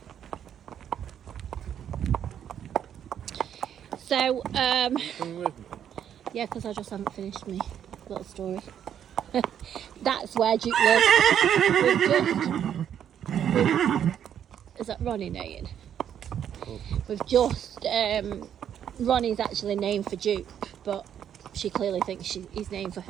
So, yeah, because I just haven't finished my little story. That's where Jupe lives. Is that Ronnie name? We've just, Ronnie's actually named for Duke, but she clearly thinks he's named for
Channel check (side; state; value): left; quieter; 9.4 dB